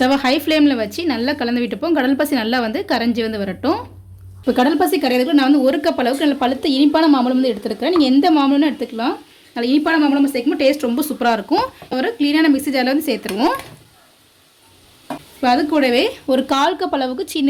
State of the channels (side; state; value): both; identical; correlation 1.00